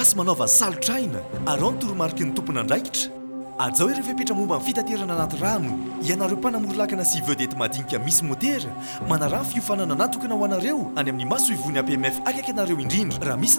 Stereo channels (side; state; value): both; inverted; correlation -1.00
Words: manaova salotraina arao ny toromarika ny tompona andraikitra azao ireo fepetra momba ny fitaterana anaty rano ianareo mpanamory-lakana sy vedety madinika misy motera manarah ny fiofanana natokana ho anareo any amin'ny maso ivony APMF akaiky anareo indrindra raha